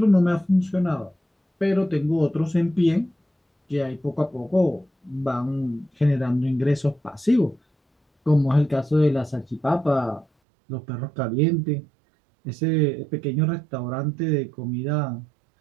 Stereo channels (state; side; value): drops out; left; at 10.2 s